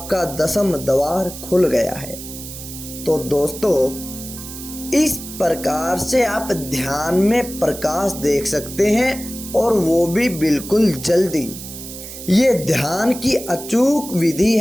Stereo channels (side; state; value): right; noise; hiss, 12 dB below the sound